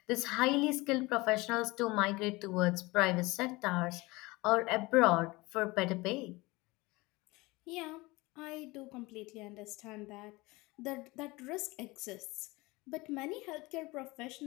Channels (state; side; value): quieter; right; 22.6 dB